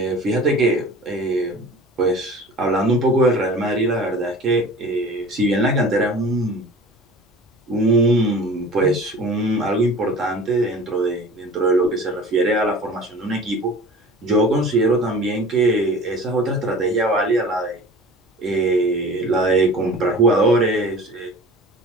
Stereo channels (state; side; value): normal; both; correlation 0.41